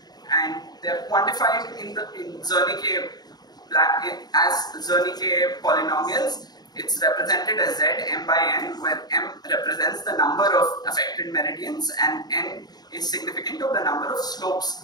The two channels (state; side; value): late; right; 0.19 ms